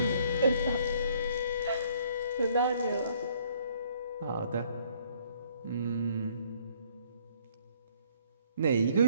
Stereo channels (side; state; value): both; inverted; correlation -0.62